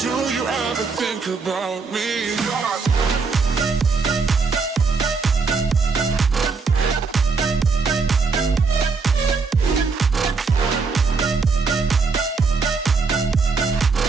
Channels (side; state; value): left; quieter; 4.6 dB